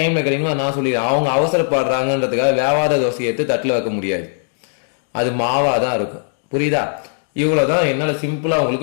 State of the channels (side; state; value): right; silent; digital silence